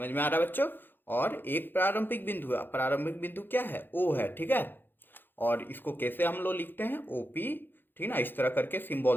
में आ रहा है बच्चों। और एक प्रारंभिक बिंदु है, प्रारंभिक बिंदु क्या है? ओ है, ठीक है। और इसको कैसे हम लोग लिखते हैं? ओपी। ठीक ना, इस तरह करके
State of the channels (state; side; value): late; right; 0.097 ms